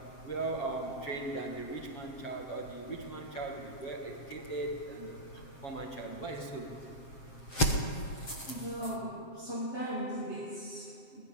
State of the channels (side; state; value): right; late; 7.5 ms